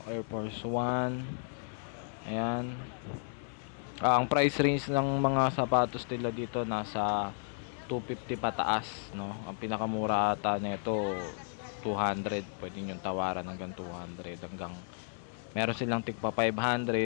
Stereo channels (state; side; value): silent; right; 56 dB below the other